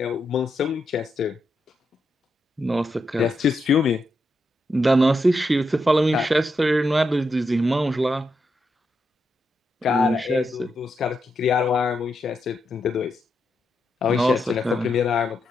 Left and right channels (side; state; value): both; normal; correlation 0.84